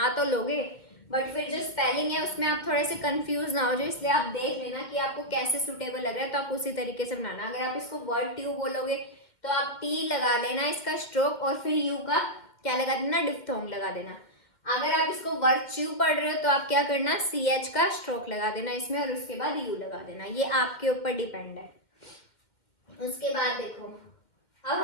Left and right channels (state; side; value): late; right; 2.1 ms